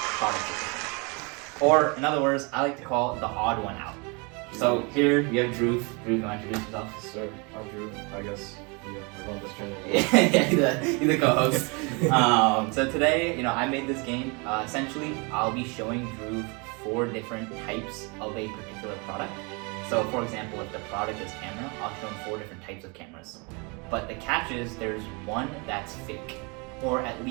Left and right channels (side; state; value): left; quieter; 30.9 dB